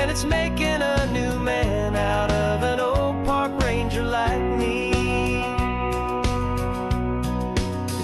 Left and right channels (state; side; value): identical; both; correlation 1.00